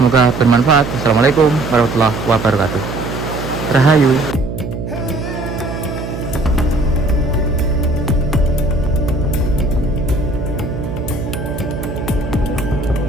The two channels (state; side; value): noise; right; hum, 6 dB below the sound